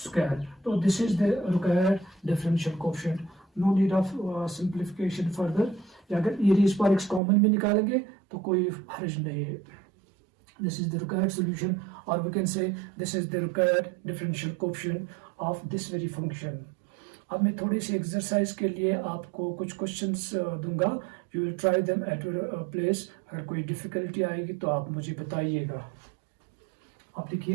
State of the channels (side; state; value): left; drops out; at 7.2 s